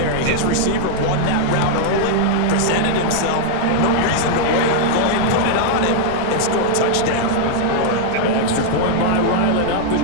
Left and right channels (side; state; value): both; different; correlation -0.01